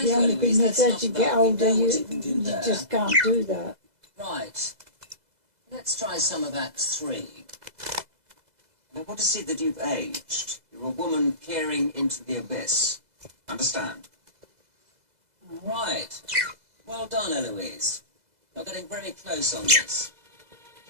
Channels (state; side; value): late; left; 2.0 ms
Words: The you, only Eloise. thing is That's as not you bad. get We older, know what you can do you there. just can't do that. Right. Let's try some of Act 3. I want to see that you've aged. You're a woman peering into the abyss. Understand? Right. Well done, Eloise. You're getting very close on this.